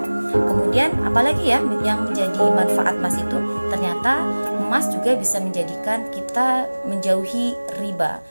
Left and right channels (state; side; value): inverted; both; correlation -1.00